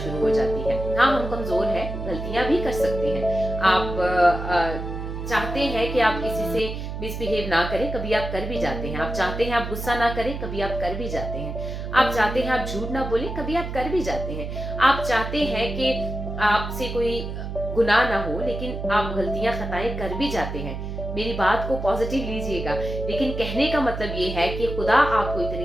हो जाती है। हाँ, हम कमजोर हैं, गलतियां भी कर सकते हैं। आप चाहते हैं कि आप किसी से मिसबिहेव ना करें, कभी आप कर भी जाते हैं। आप चाहते हैं आप गुस्सा ना करें, कभी आप कर भी जाते हैं। आप चाहते हैं आप झूठ ना बोले, कभी आप कर भी जाते हैं। आप चाहते हैं कि आपसे कोई गुनाह ना हो, लेकिन आप गलतियां खताएं कर भी जाते हैं। मेरी बात को पॉजिटिव लीजिएगा, लेकिन कहने का मतलब ये है कि खुदा आपको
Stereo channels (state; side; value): noise; right; hum, 6 dB below the sound